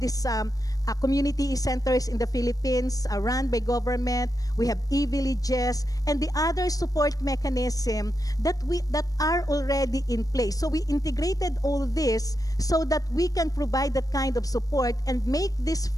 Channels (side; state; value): right; late; 0.18 ms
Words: this community e-centers in the Philippines run by government. We have e-villages and the other support mechanism that are already in place. So we integrated all this so that we can provide that kind of support and make this